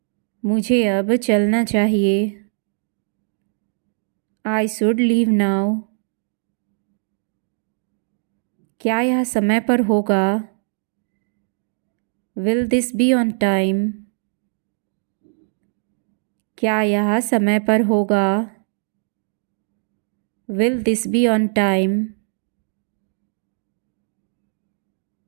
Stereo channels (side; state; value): left; silent; digital silence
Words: मुझे अब चलना चाहिए। I should leave now. क्या यह समय पर होगा? Will this be on time? क्या यह समय पर होगा? Will this be on time?